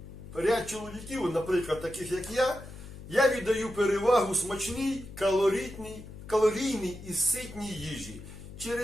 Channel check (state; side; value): noise; left; hum, 14 dB below the sound